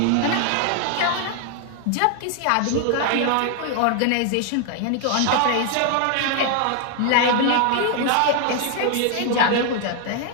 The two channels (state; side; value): different; both; correlation 0.00